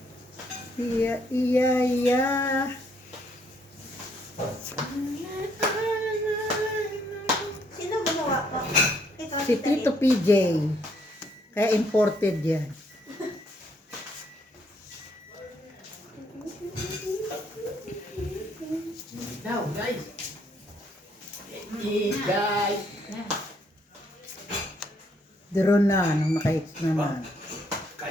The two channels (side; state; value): both; normal; correlation 0.70